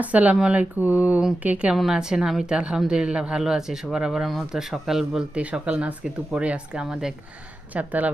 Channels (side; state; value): both; normal; correlation 0.92